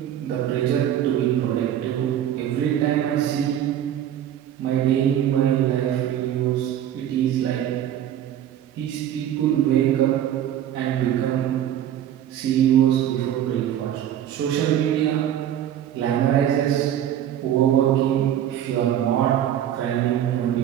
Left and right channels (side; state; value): left; quieter; 10.8 dB